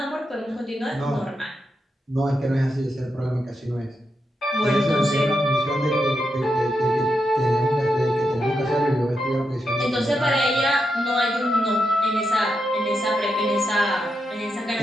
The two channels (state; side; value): normal; both; correlation 0.85